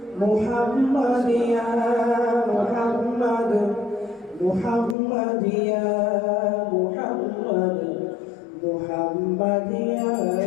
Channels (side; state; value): right; drops out; at 5.0 s